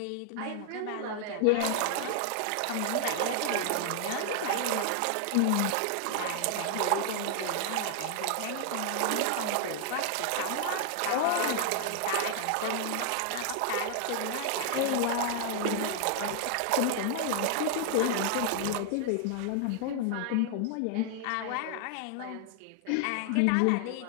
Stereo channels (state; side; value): different; both; correlation 0.00